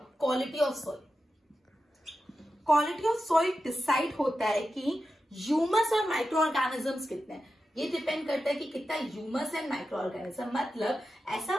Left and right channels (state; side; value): normal; both; correlation 0.91